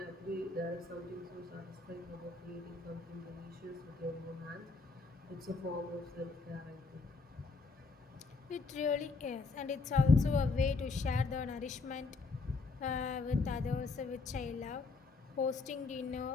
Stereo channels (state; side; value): quieter; right; 4.0 dB